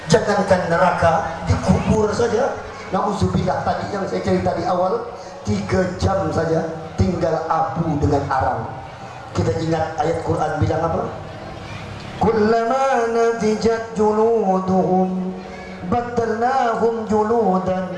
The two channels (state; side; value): identical; both; correlation 1.00